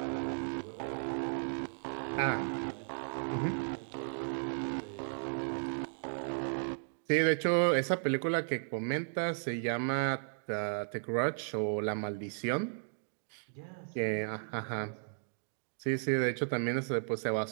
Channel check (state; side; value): silent; left; digital silence